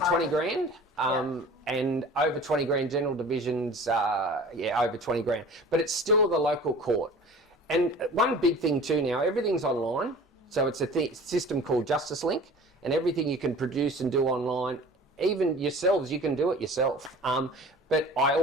and over $20,000 general divisions, over $20,000. But it's still the local court. And one big thing too now, everything's online. So it's a system called Justice Link, and everything you can produce and do online, even yourselves, you can do it yourself. But I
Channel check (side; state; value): both; normal; correlation 0.43